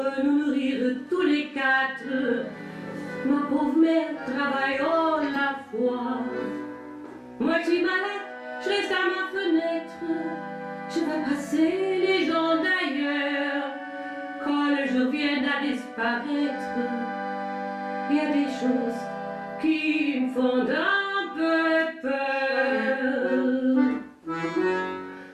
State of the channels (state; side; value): identical; both; correlation 1.00